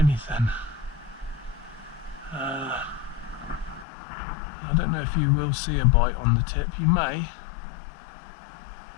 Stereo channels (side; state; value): right; drops out; at 3.9 s